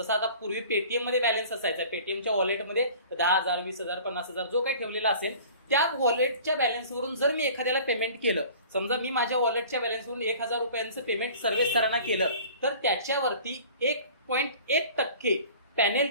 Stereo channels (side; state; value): both; inverted; correlation -0.45